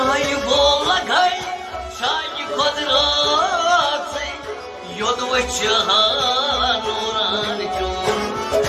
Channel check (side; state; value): both; identical; correlation 1.00